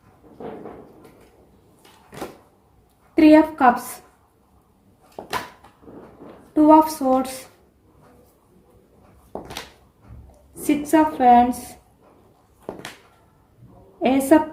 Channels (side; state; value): both; identical; correlation 1.00